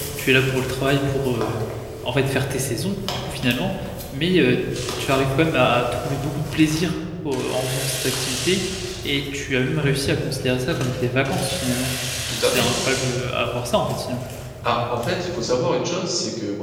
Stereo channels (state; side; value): identical; both; correlation 1.00